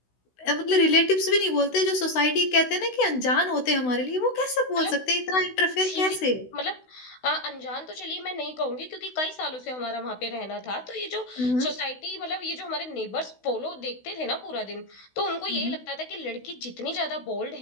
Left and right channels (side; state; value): right; late; 16 ms